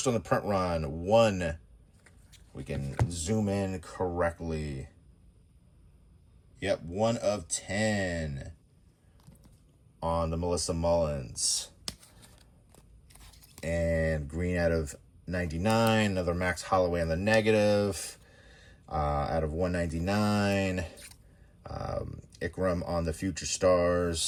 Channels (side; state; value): both; identical; correlation 1.00